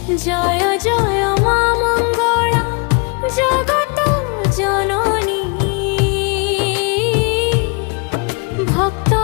জয় জয় মা মঙ্গলা জগত জননী, ভক্ত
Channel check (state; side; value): quieter; right; 32.9 dB